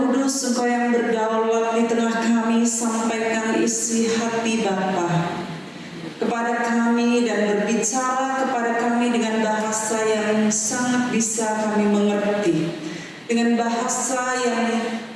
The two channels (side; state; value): both; identical; correlation 1.00